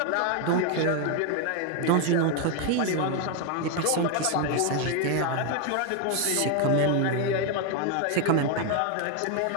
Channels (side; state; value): both; different; correlation 0.01